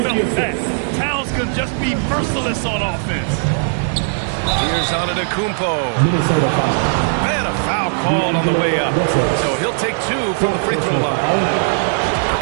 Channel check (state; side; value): silent; left; digital silence